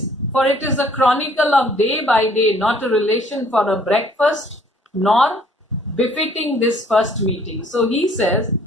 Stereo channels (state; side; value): normal; both; correlation 0.60